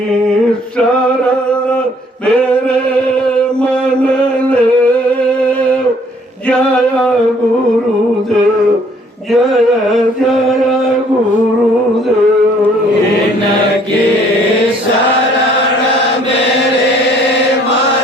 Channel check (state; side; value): normal; both; correlation 0.60